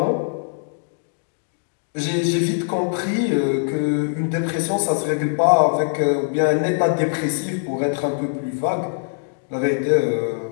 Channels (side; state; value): right; silent; digital silence